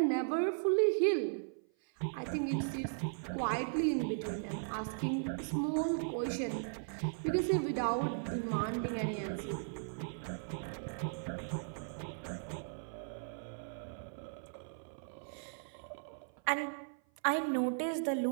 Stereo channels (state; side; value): silent; left; 53 dB below the other